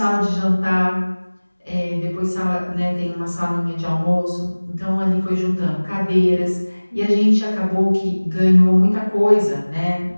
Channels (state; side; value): inverted; both; correlation -1.00